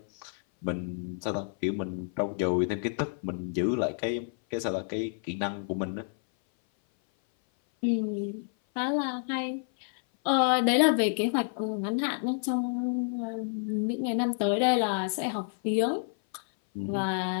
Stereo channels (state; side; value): silent; right; 56 dB below the other